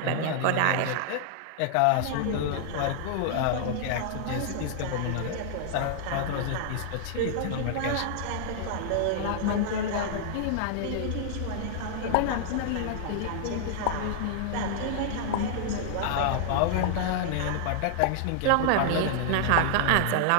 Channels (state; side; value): different; both; correlation -0.01